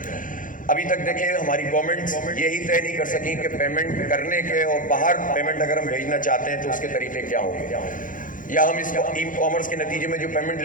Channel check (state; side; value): late; right; 0.39 ms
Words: ابھی تک دیکھیں ہماری گورنمنٹ یہی طے نہیں کر سکی کہ پیمنٹ کرنے کے اور باہر پیمنٹ اگر ہم بھیجنا چاہتے ہیں تو اس کے طریقے کیا ہوں گے, یا ہم اس ای کامرس کے نتیجے میں جو پیمنٹ